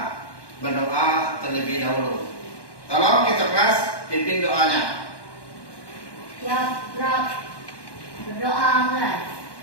berdoa terlebih dahulu. Tolong kita kelas pimpin doanya. Ya, Rob. Berdoa, kan?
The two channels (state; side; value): late; right; 1.1 ms